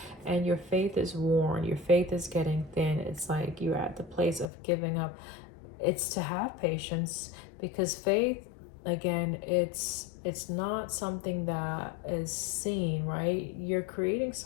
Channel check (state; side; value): drops out; right; at 4.5 s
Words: and your faith is worn, your faith is getting thin, it's like you're at the place of giving up, it's to have patience, because faith, again, it's not something that is seen, right? You're creating